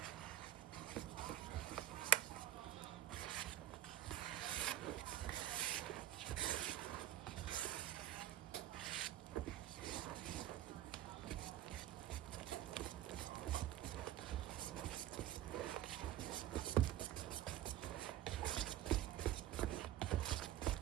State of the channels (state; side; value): quieter; left; 13.0 dB